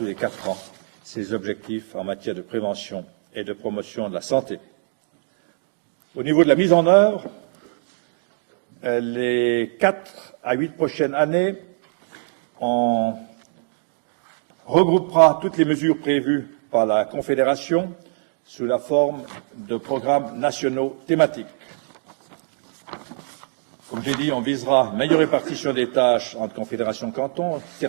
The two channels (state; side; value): silent; left; digital silence